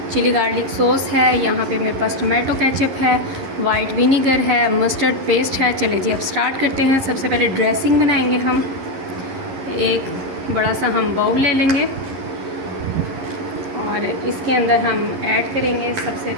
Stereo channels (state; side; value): late; left; 11 ms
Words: चिली गार्लिक सॉस है, यहाँ पे मेरे पास टोमेटो केचप है, वाइट विनीगर है, मस्टर्ड पेस्ट है। चले जी अब स्टार्ट करते हैं। सबसे पहले ड्रेसिंग बनाएंगे हम। एक बड़ा सा हम बाउल ले लेंगे और इसके अंदर हम ऐड करेंगे सबसे